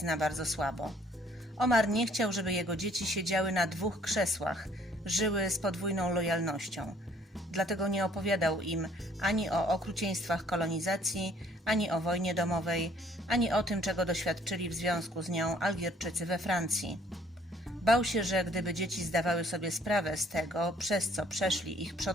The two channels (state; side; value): normal; both; correlation 0.60